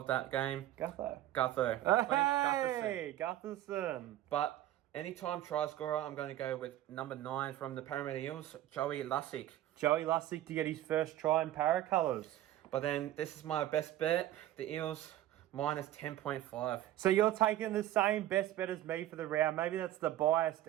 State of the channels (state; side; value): quieter; left; 13.6 dB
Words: that game, Gutho. Hey, Gutherson. But anytime try scorer, I'm going to go with number 9 from the Parramatta Eels, Joey Lussick. Joey Lussick to get his first try in para colours. But then this is my best bet, the Eels minus 10.5. So you're taking the same best bet as me for the round. Maybe that's the biased